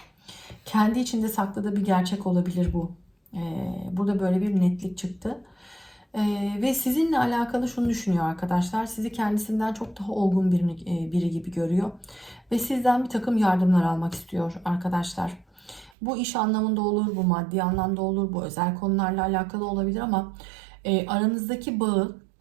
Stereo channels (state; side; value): drops out; left; at 15.9 s